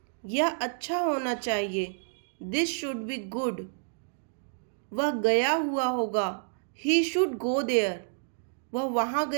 यह अच्छा होना चाहिए, दिस शुड बी गुड, वह गया हुआ होगा, ही शुड गो देयर, वह वहाँ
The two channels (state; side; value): silent; left; digital silence